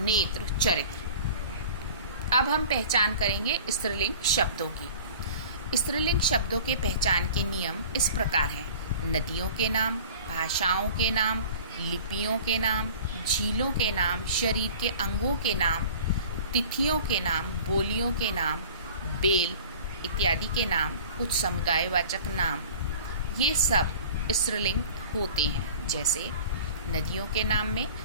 चरित्र। अब हम पहचान करेंगे स्त्रीलिंग शब्दों की। स्त्रीलिंग शब्दों के पहचान के नियम इस प्रकार हैं: नदियों के नाम, भाषाओं के नाम, लिपियों के नाम, झीलों के नाम, शरीर के अंगों के नाम, तिथियों के नाम, बोलियों के नाम, बेल इत्यादि के नाम, कुछ समुदायवाचक नाम। ये सब स्त्रीलिंग होते हैं, जैसे नदियों के नाम में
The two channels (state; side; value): inverted; both; correlation -0.43